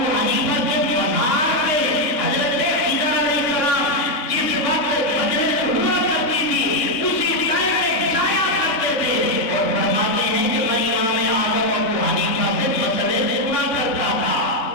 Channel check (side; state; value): right; late; 3.7 ms